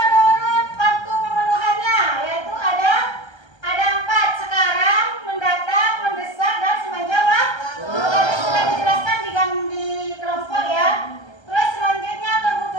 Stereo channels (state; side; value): late; right; 1.3 ms